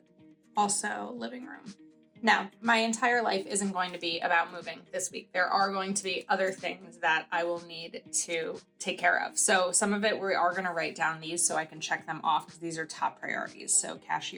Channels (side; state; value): both; identical; correlation 1.00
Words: Also living room. Now, my entire life isn't going to be about moving this week. There are going to be other things that I will need to take care of. So some of it we are going to write down these so I can check them off because these are top priorities. So